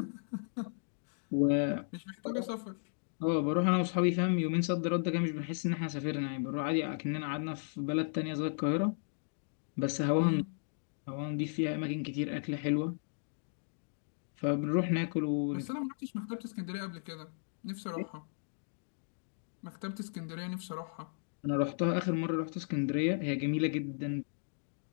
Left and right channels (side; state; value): right; silent; digital silence